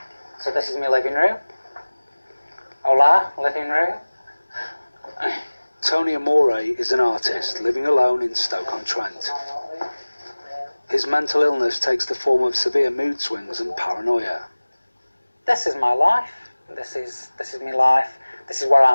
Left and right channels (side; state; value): both; inverted; correlation -1.00